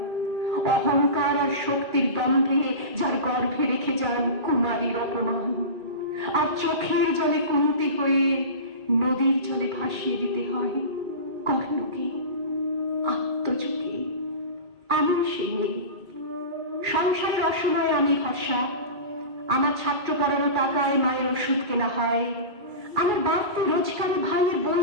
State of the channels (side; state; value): left; late; 2.4 ms